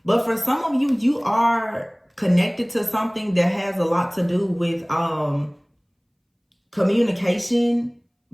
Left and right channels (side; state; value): both; identical; correlation 1.00